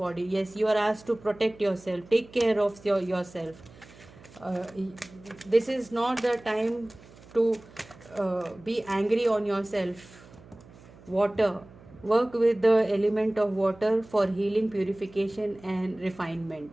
Yes, you are asked to protect yourself, take care of yourself. This is not the time to be angry on yourself. Water. Work with the element of water for healing, purification and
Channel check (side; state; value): right; noise; hum, 22 dB below the sound